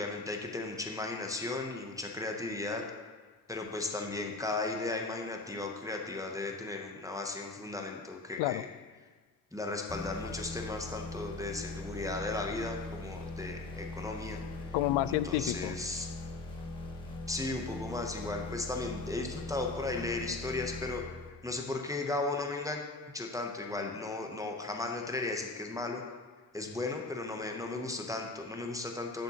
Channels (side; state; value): right; quieter; 3.5 dB